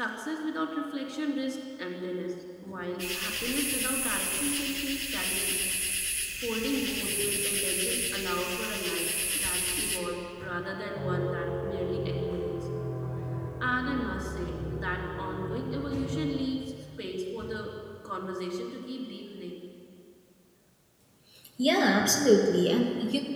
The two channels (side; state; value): both; identical; correlation 1.00